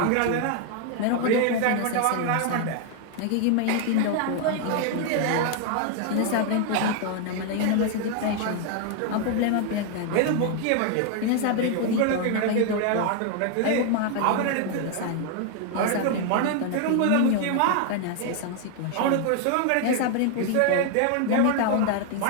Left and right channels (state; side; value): different; both; correlation 0.00